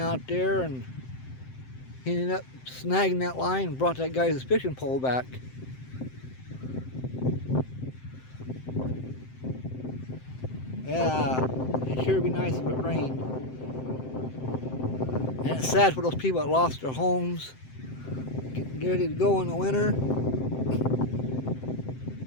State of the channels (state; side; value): late; right; 7.7 ms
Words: there, and he ended up snagging that line and brought that guy's fishing pole back. Yeah, it sure would be nice if it rained. And it's sad for those people that lost their homes, getting ready to go in the winter